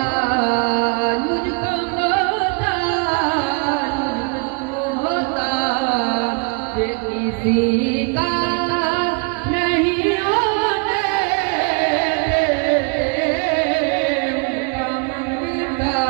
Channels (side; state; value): left; quieter; 34.6 dB